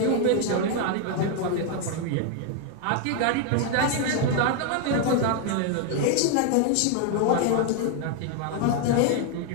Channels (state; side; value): different; both; correlation 0.01